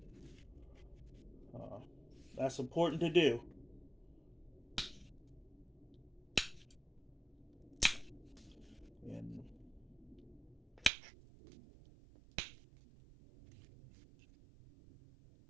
that's important to do. And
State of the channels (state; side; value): drops out; left; at 10.9 s